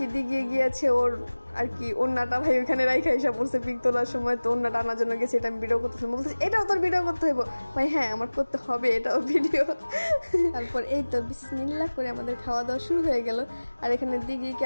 দিকে গিয়েছে ওর আর কি ওন্নাটা ভাই ওইখানে রাইখা এসে পড়ছে পিক তোলার সময়। তো ওন্নাটা আনার জন্য গেছে, এটা আমি ভিডিও করতেছিলাম, বলতেছি এটাও তোর ভিডিও করতে হইব ভাই। হ্যাঁ আমার করতে হবে এটাও ভিডিও। তারপর এই তো বিসমিল্লাহ করে আমাদের খাওয়া দাওয়া শুরু হয়ে গেল। আর এখানে দিঘিকে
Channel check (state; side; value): inverted; both; correlation -1.00